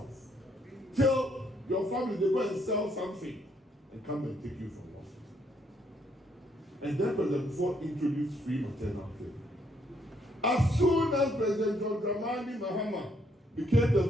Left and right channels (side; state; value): both; normal; correlation 0.71